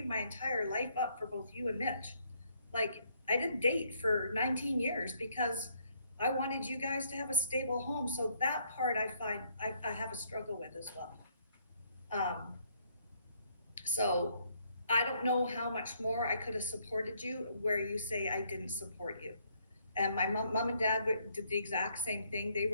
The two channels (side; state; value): both; inverted; correlation -0.69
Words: my entire life up for both you and Mitch. Like, I didn't date for 19 years because I wanted you guys to have a stable home. So that part I find I have a struggle with as well. Um, so I don't know how much more I could have supported you where you say I didn't support you. And my mom and dad did the exact same thing. They